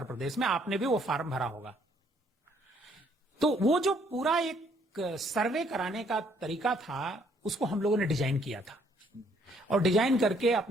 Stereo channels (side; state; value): both; normal; correlation 0.66